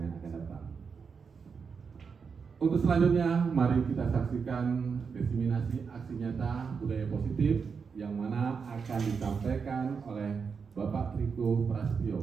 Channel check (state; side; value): quieter; left; 5.7 dB